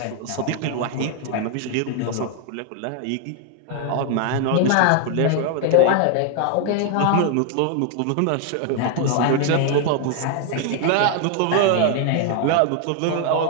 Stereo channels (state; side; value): different; both; correlation 0.00